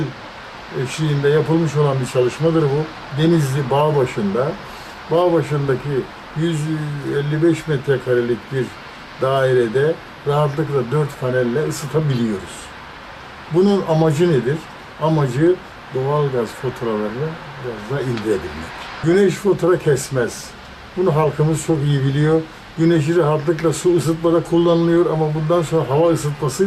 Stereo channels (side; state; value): both; identical; correlation 1.00